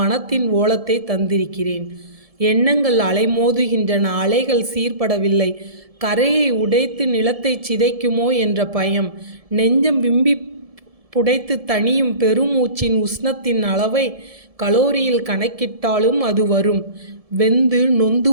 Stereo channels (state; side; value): late; left; 1.7 ms